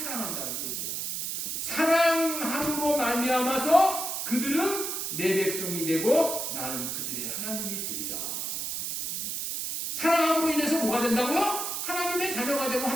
얘기야. 사랑함으로 말미암아서 그들은 내 백성이 되고 나는 그들의 하나님이 되리라. 사랑함으로 인해서 뭐가 된다고요? 하나님의 자녀가 되고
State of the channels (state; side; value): noise; right; hiss, 3 dB below the sound